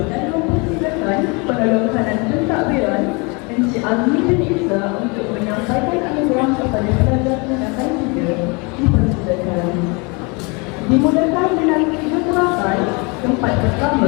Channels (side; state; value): right; quieter; 29.9 dB